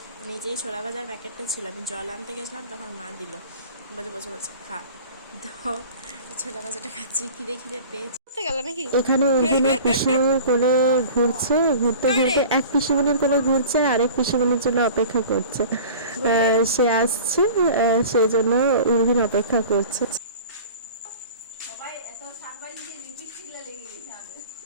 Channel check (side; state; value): both; inverted; correlation -0.41